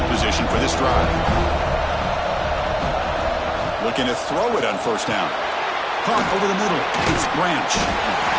position for this drive. Looking to throw it on 1st down. Caught over the middle. It's Branch.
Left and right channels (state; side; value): identical; both; correlation 1.00